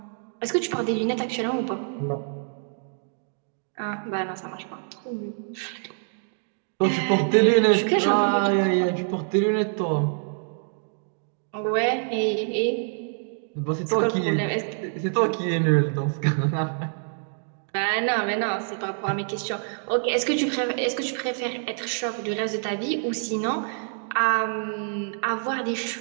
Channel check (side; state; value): left; silent; 61 dB below the other